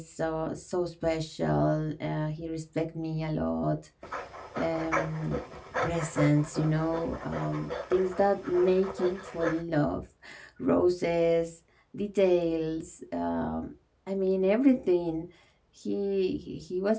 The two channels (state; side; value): identical; both; correlation 1.00